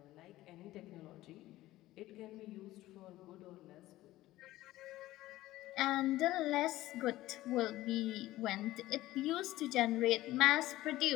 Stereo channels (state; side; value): quieter; right; 16.3 dB